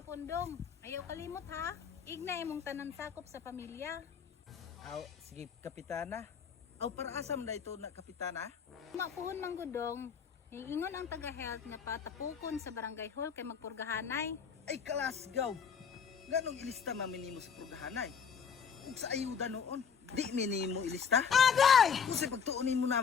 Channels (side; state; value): right; quieter; 6.8 dB